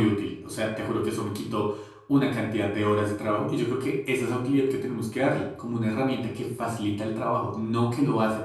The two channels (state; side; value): identical; both; correlation 1.00